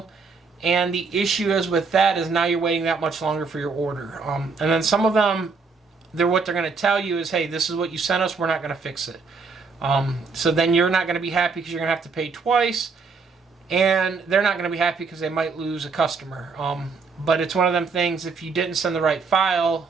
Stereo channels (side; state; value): left; quieter; 4.7 dB